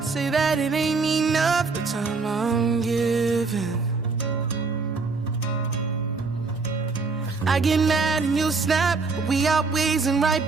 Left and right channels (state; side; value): quieter; left; 4.3 dB